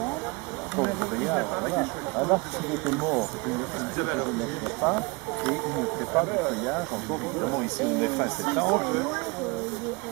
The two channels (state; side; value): quieter; left; 27.9 dB